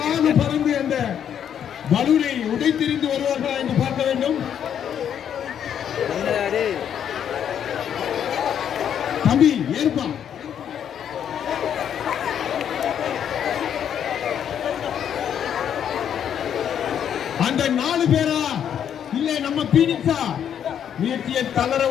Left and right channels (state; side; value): quieter; right; 9.0 dB